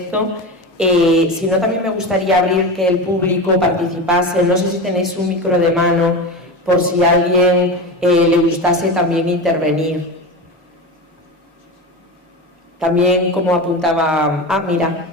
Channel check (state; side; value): normal; both; correlation 0.24